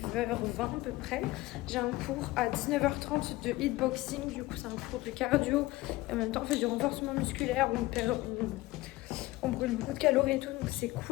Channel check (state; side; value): quieter; right; 19.0 dB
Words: à peu près. J'ai un cours à 19h30 de hitboxing. Du coup c'est un cours de cardio. Et en même temps on fait du renforcement musculaire. On brûle beaucoup de calories et tout, donc c'est